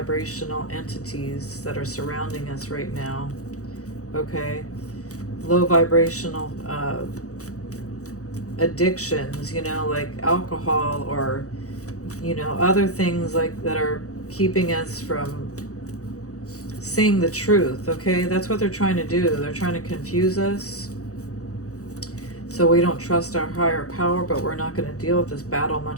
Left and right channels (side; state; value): right; late; 0.66 ms